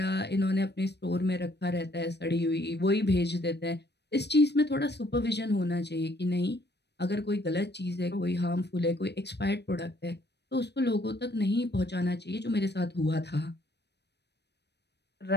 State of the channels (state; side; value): late; right; 0.49 ms